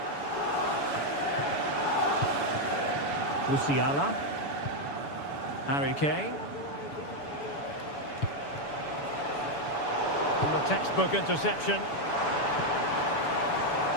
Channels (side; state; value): right; late; 7.0 ms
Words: Musiala. Harry Kane. And the textbook interception.